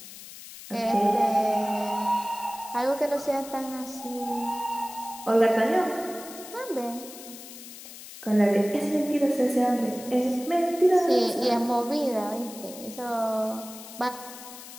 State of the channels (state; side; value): noise; left; hiss, 15 dB below the sound